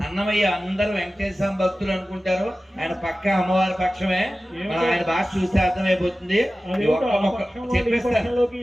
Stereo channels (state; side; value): normal; both; correlation 0.96